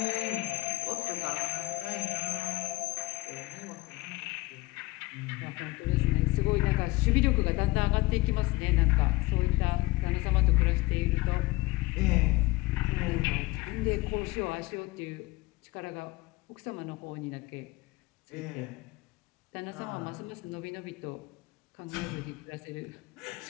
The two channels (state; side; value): quieter; right; 21.4 dB